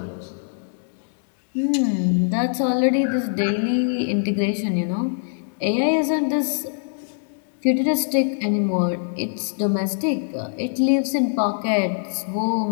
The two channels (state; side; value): silent; right; digital silence